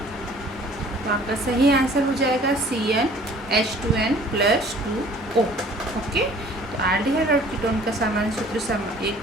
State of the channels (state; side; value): normal; both; correlation 0.52